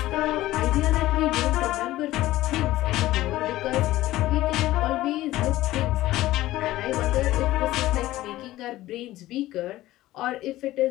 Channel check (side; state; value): right; quieter; 16.1 dB